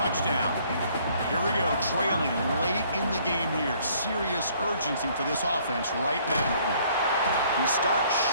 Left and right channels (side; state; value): both; inverted; correlation -0.61